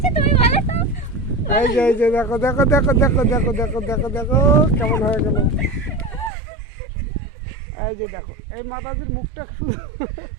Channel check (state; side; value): drops out; left; at 6.3 s